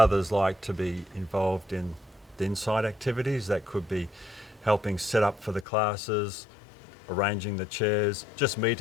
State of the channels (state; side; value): drops out; right; at 5.7 s